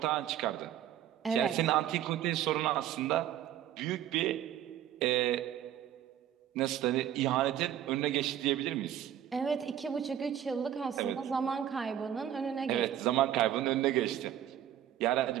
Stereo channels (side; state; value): left; quieter; 10.9 dB